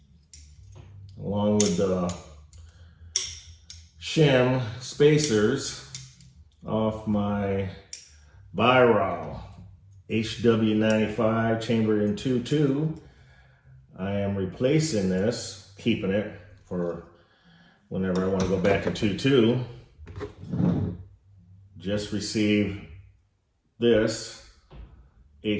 along with the shim spacers off my Weihrauch HW95 chambered in 2.2. I am replacing this, keeping it for whenever I want to go back to 2.2. Just received this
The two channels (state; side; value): identical; both; correlation 1.00